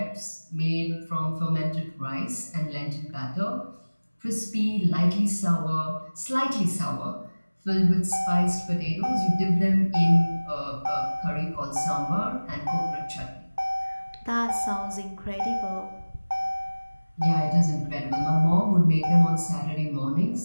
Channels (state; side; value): inverted; both; correlation -1.00